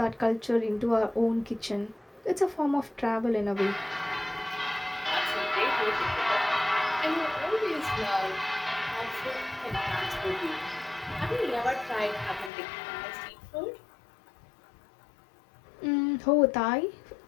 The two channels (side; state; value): right; drops out; at 12.5 s